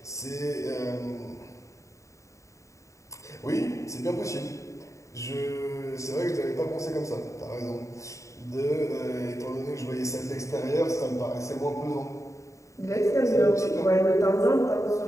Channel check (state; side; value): late; right; 0.15 ms